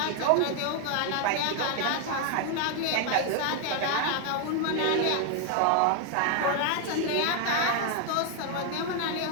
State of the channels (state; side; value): different; both; correlation 0.01